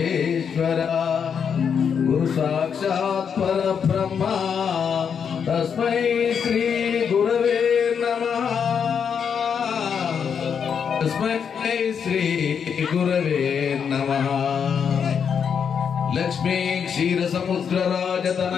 గురు సాక్షాత్ పరబ్రహ్మ తస్మై శ్రీ గురవే నమః. తస్మై శ్రీ గురవే నమః. లక్ష్మీ క్షీర సముద్ర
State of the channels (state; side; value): quieter; right; 7.1 dB